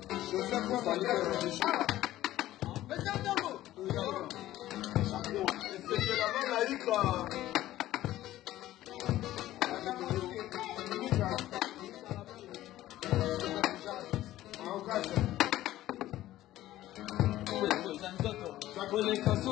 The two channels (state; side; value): quieter; right; 14.7 dB